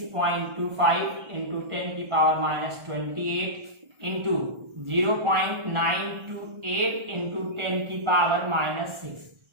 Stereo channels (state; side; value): late; left; 1.4 ms